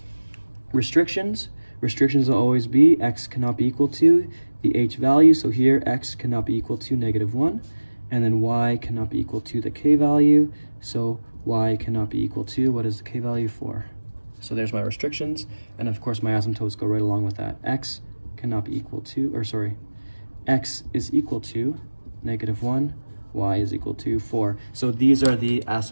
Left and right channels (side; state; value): both; inverted; correlation -1.00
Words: Restrictions. Restrictions will always be x cannot be equal to the h value. So here, x cannot be equal to -1. And then y cannot be equal to the k value. So y cannot be equal to, what is the k value for? So there's my restrictions. And of course, my asymptotes go right along with that. X cannot be equal to, x is equal to -1. Y is equal to 4. So these are the